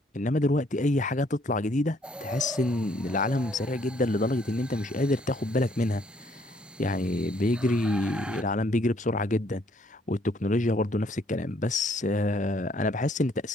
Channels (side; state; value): both; normal; correlation 0.66